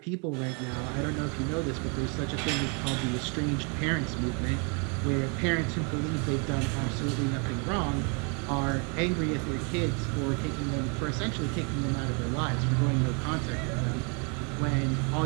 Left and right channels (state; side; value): quieter; left; 35.2 dB